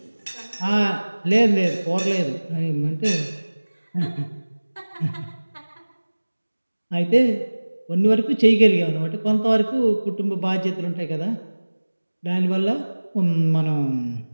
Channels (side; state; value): both; inverted; correlation -1.00